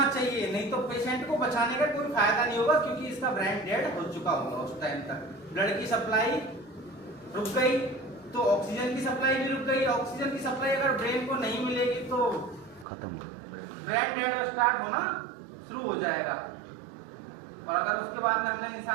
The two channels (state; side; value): drops out; left; at 12.9 s